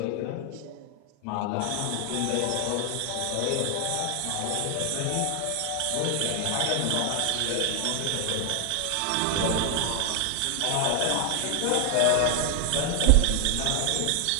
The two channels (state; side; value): different; both; correlation 0.00